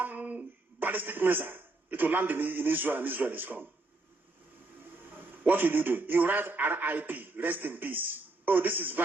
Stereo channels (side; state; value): left; quieter; 3.1 dB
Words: ballistic missile. It will land in Israel, and Israel is gone. What will you do? You write RIP, rest in peace. Oh, this is